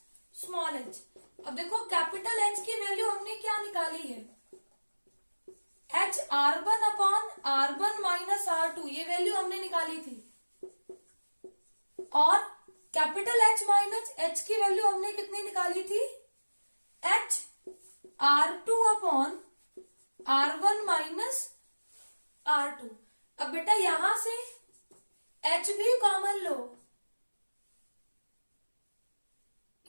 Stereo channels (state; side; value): inverted; both; correlation -1.00